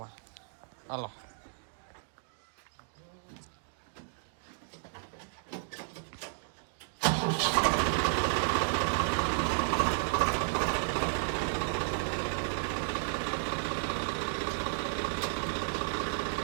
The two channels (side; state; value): left; silent; digital silence